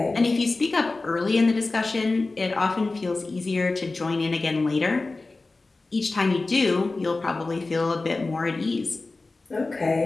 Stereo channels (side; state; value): right; quieter; 3.4 dB